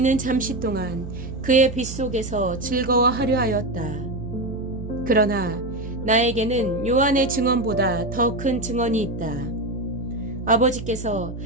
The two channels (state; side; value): noise; right; hum, 9 dB below the sound